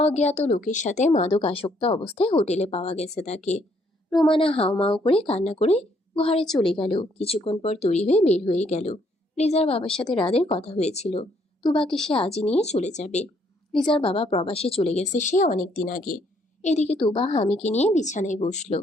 লোকের সাথে মাদক আসক্ত অবস্থায় হোটেলে পাওয়া গেছে তাকে। রোমানা হাউমাউ করে কান্না করে ঘরে চলে গেল। কিছুক্ষণ পর তৈরি হয়ে বের হয়ে গেল। লিজার বাবার সাথে রাদের কথা হয়েছিল, তুবাকে সে আজই নিয়ে চলে যাবে। লিজার বাবা প্রবাসে চলে গেছে সে অনেক দিন আগে। এদিকে তুবা হামিকে নিয়ে বিছানায় বসলো।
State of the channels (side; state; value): both; normal; correlation 0.69